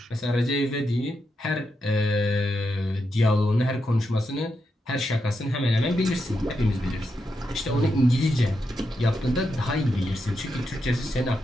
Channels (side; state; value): both; normal; correlation 0.84